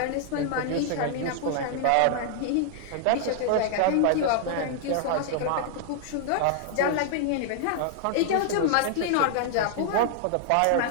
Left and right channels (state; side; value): different; both; correlation -0.01